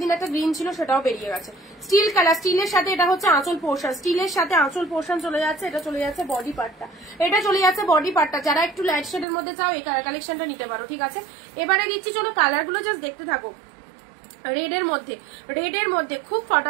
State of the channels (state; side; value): drops out; left; at 9.2 s